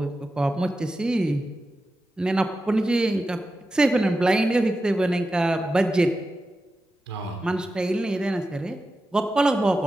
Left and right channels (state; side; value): normal; both; correlation 0.92